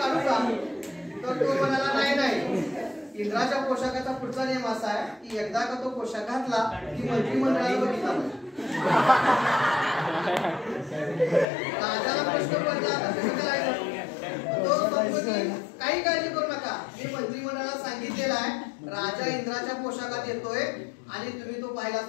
का, तर तो म्हणाला नाही नाही, इंद्राच्या पोशाखाचा पुढचा नियम असा आहे की एकदा का तो पोशाख घातला की मंत्रिमंडळाला बघितला राजाला प्रश्न पडला आता कसं करायचं, तो म्हणतो की काही काळजी करू नका, मी मंत्रिमंडळाला सांगितलेलं आहे राजा इंद्राच्या पोशाखात येतोय आणि तुम्ही तो पाहिलाच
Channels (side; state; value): right; drops out; at 11.5 s